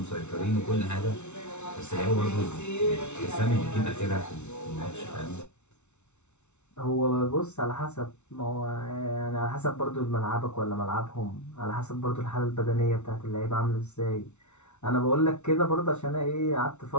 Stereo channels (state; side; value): late; right; 0.82 ms